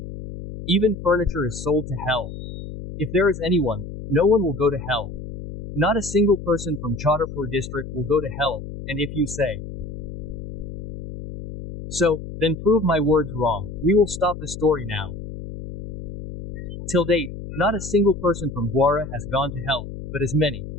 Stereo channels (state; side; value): noise; left; hum, 9 dB below the sound